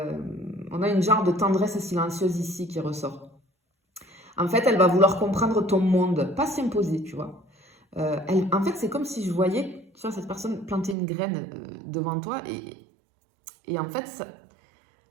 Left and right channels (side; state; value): left; drops out; at 11.0 s